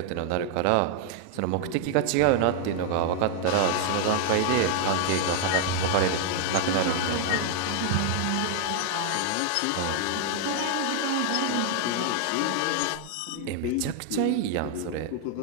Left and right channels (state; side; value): different; both; correlation 0.00